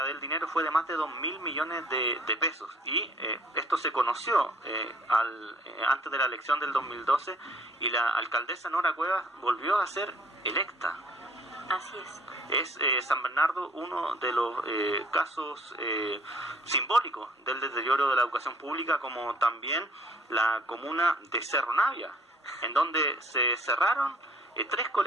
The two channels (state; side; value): normal; both; correlation 0.57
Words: del dinero fue de más de 2.000 millones de pesos, y esto se conoció antes de la elección del 2012, y la alcaldesa Nora Cuevas volvió a ser electa. Así es. Es San Bernardo uno de los casos simbólicos del deterioro de la educación pública, como también la comuna de Cerro Navia, en donde se cerraron 3